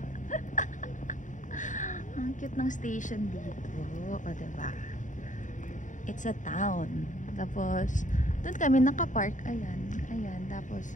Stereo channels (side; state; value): right; late; 0.36 ms